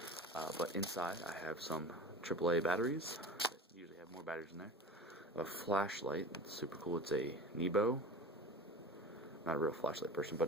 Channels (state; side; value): normal; both; correlation 0.34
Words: But inside, I have some AAA batteries. I usually have more batteries in there. A flashlight. It's super cool. It's a Nebo. Not a real flashlight person, but